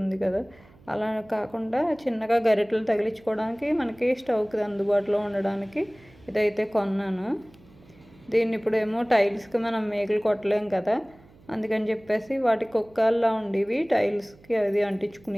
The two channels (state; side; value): noise; right; hum, 26 dB below the sound